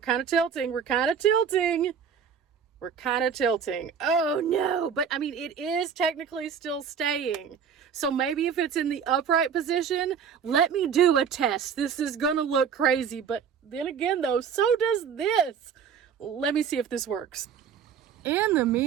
tilting. We're kind of tilting. We're kind of tilting. Oh no, but I mean, it is technically still staying. So maybe if it's in the upright position, let me do a test. This is gonna look crazy, but then again though, so does this. Let me see if this works. In the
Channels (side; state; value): left; quieter; 7.2 dB